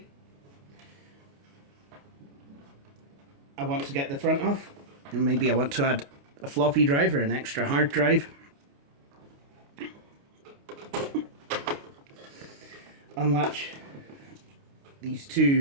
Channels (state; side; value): late; left; 29 ms